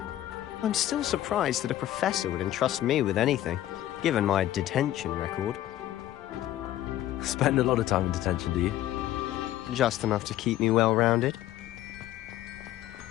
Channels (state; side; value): quieter; right; 13.6 dB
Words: I'm still surprised that a professor would entrust me with anything, given my detention record. Spend a lot of time in detention, do you? Just enough to keep me well-rounded.